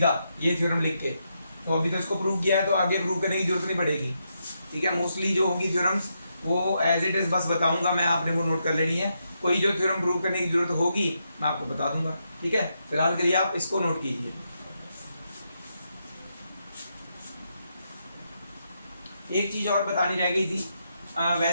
ये थ्योरम लिख के। तो अभी तो इसको प्रूव किया है तो आगे प्रूव करने की जरूरत नहीं पड़ेगी। ठीक है। मोस्टली जो होंगी थ्योरम्स वो एज इट इज बस बताऊंगा मैं, आपने वो नोट कर लेनी है। कोई जो थ्योरम प्रूव करने की जरूरत होगी मैं आपको बता दूंगा। ठीक है। फिलहाल के लिए आप इसको नोट कीजिए। एक चीज और बतानी रह गई थी,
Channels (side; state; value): both; inverted; correlation -0.82